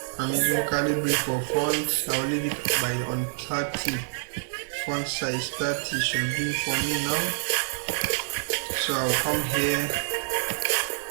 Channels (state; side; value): silent; left; digital silence